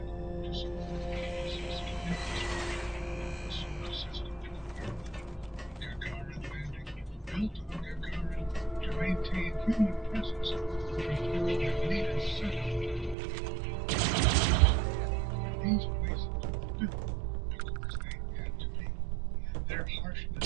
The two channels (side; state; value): left; drops out; at 13.2 s